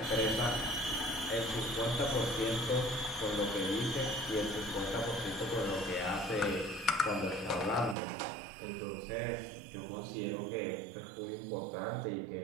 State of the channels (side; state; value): left; drops out; at 8.0 s